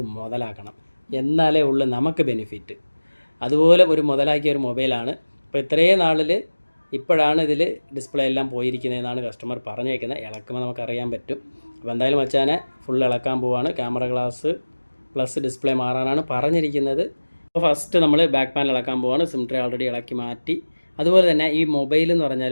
മുതലാക്കണം, എന്നാലേ ഉള്ളൂ നമുക്ക് ബെനിഫിറ്റ്. അതുപോലെ ഒരു മുതലാക്കിയ ഒരു മൊബൈലാണ്. അപ്പോൾ ഇത്രയും നാളിൽ ഇപ്പോഴാണ് ഇതിൽ ഡിസ്പ്ലേ എല്ലാം പോയിരിക്കുന്നതെന്നാണ് കസ്റ്റമർ പറഞ്ഞേക്കുന്നത്. ഇളക്കുമ്പോൾ നമുക്കറിയാൻ പറ്റും. അപ്പോൾ എന്തായാലും മച്ചാനെ ഫുൾ ഇളക്കാൻ പോവാണ്. ക്യാമറ ഗ്ലാസ് പ്ലസ് ഡിസ്പ്ലേ മാറാനാണ് പറഞ്ഞിരിക്കുന്നത്. അപ്പോൾ ഫസ്റ്റ് നമ്മൾ ബാക്ക് പാനൽ ഇളക്കാൻ പോവാണ്. സിം ട്രേ ഓൾറെഡി ഇളക്കി മാറ്റി. അതുപോലെ തന്നെ ഈ മൊബൈൽ എന്ന് പറഞ്ഞാൽ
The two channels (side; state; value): both; inverted; correlation -1.00